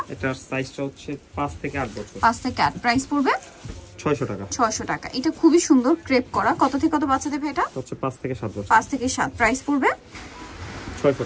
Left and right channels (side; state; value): both; identical; correlation 1.00